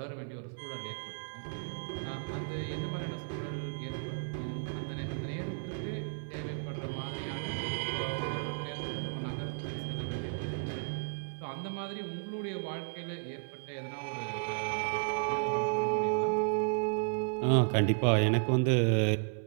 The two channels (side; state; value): left; silent; 55 dB below the other